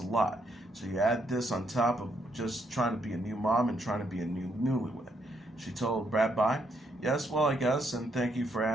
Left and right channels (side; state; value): both; normal; correlation 0.75